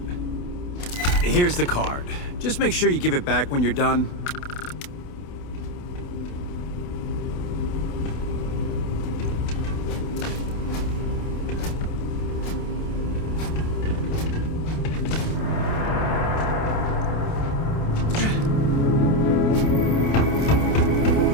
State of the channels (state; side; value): late; right; 28 ms